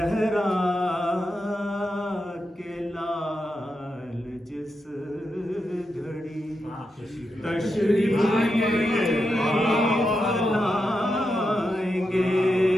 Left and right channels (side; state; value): both; normal; correlation 0.87